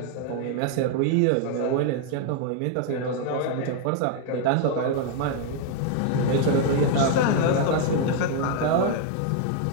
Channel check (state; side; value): different; both; correlation 0.00